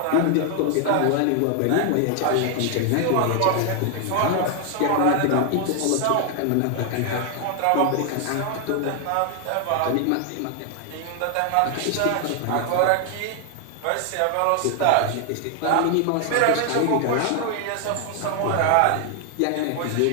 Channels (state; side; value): different; both; correlation 0.00